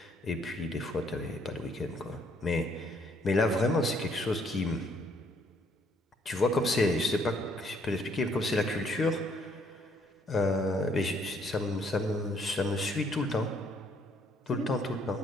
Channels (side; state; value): both; normal; correlation 0.67